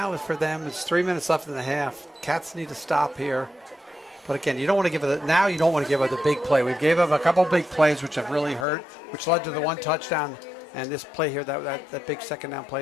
for them, it's 3 minutes left in the half. Cats need to stop here. But again, you don't want to give it. Now you don't want to give up the big play. We've gave up a couple big plays which have really hurt, which led to the 1 touchdown. And this play here, that big 2nd down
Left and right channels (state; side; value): drops out; right; at 8.7 s